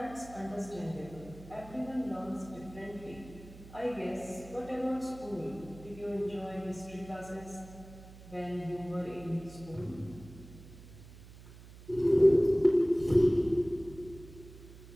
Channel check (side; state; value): right; noise; hum, 18 dB below the sound